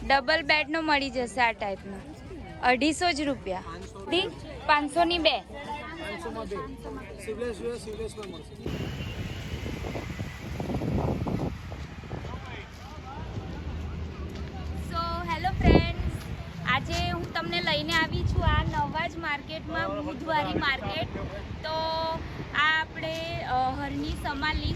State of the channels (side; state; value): both; identical; correlation 1.00